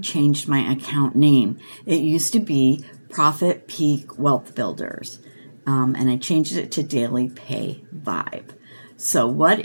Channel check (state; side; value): inverted; both; correlation -1.00